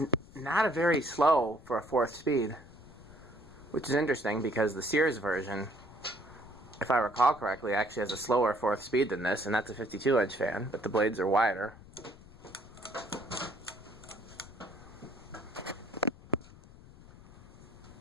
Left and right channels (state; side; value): noise; left; rumble, 20 dB below the sound